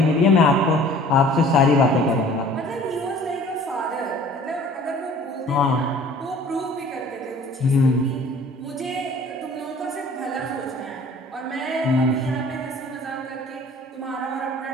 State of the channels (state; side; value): normal; both; correlation 0.50